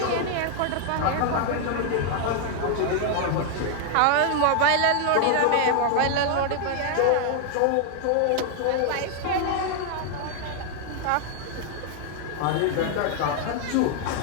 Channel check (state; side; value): different; both; correlation 0.00